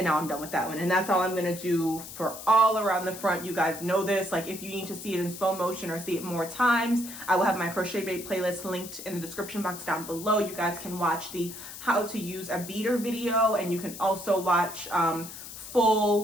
now I'm done with that one. And that's all I'm gonna do for all around the front. You guys know this. Like, if you need to see it in slow motion or see it more times, I will have my crochet braid playlist linked in the description box down below. You guys can watch the how to use a beater video, and you can also watch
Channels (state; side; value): noise; left; hiss, 12 dB below the sound